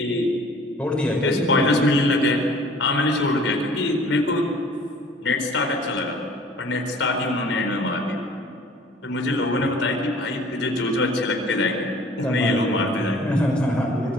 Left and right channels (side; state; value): both; normal; correlation 0.51